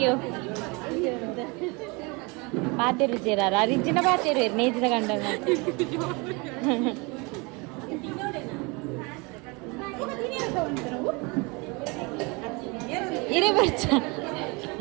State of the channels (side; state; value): left; quieter; 28.1 dB